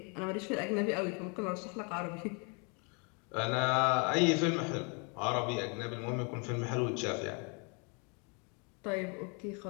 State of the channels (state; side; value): quieter; right; 34.3 dB